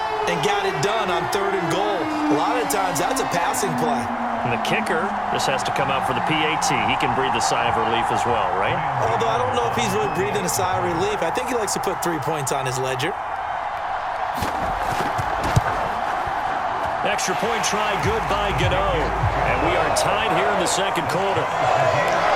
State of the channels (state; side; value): identical; both; correlation 1.00